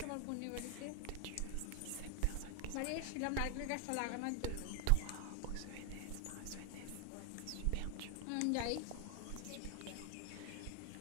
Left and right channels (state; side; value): different; both; correlation 0.00